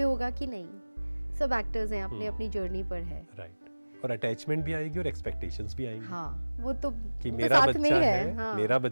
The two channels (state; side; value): inverted; both; correlation -1.00